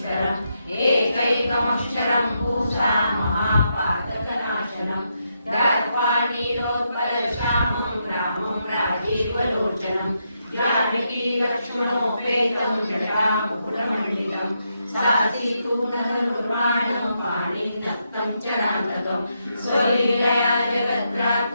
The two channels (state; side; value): inverted; both; correlation -0.81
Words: एकैकमक्षरं पूषा महापातकनाशनं दत्त्वा नीलोत्पलश्यामं रामं राजीवलोचनं जानकी लक्ष्मणोपेतं जटामुकुटमण्डितं सासीतूणधनुर्बाणं पाणिनक्तं चरान्तकं स्वलीलया